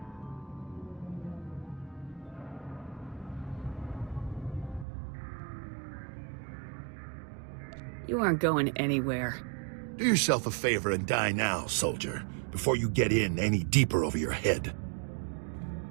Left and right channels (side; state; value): left; drops out; at 4.9 s